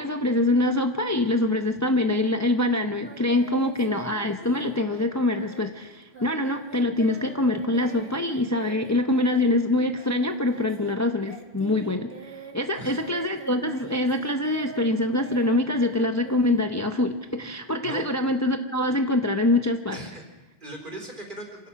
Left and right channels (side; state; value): both; normal; correlation 0.20